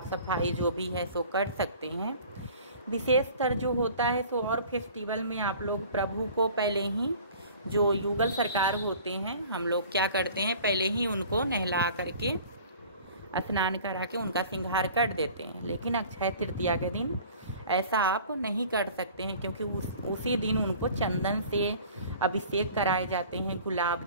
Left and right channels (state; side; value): inverted; both; correlation -0.47